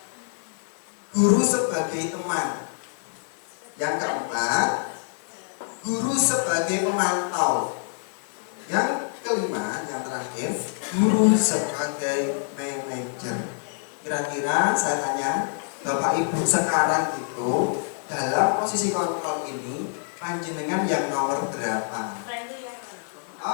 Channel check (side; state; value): right; silent; digital silence